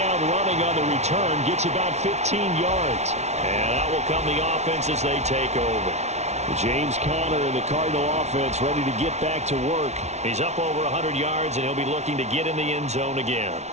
running on the return. Gets about 15 yards. And out will come the offense as they take over. James Conner and the Cardinal offense ready to get back to work. He's up over 100 yards, and he'll be looking to get in the end zone again.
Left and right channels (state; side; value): late; left; 0.32 ms